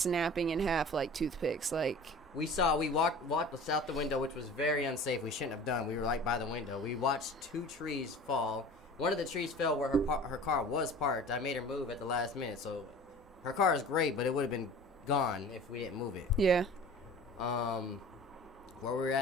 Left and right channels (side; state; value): both; normal; correlation 0.41